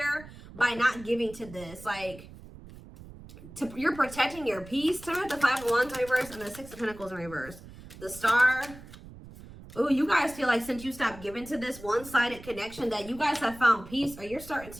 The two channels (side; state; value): right; noise; rumble, 17 dB below the sound